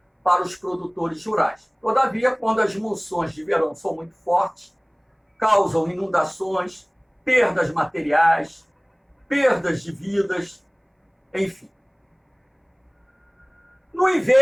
para os produtores rurais. Todavia, quando as monções de verão são muito fortes, causam inundações, perdas materiais, perdas de vidas, enfim. No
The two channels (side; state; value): both; identical; correlation 1.00